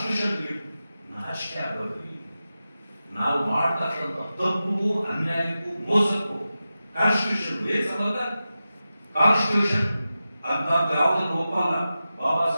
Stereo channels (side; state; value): both; inverted; correlation -0.93